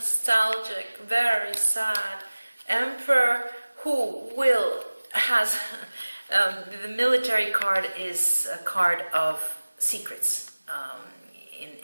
very sad. Emperor who has... the military card is a card of secrets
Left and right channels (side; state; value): both; inverted; correlation -1.00